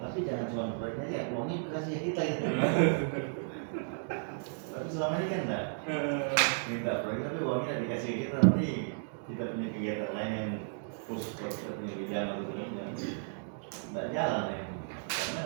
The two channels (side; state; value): left; silent; digital silence